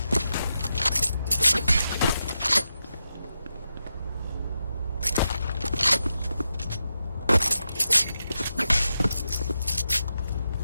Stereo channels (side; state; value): both; inverted; correlation -0.87